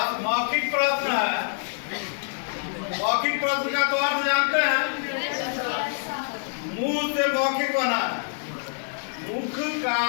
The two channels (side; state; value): right; silent; digital silence